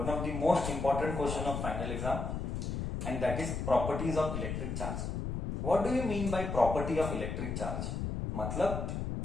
of the most important question of final exam, and that is properties of electric charge. What do you mean by property of electric charge? मतलब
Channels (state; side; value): noise; left; rumble, 3 dB below the sound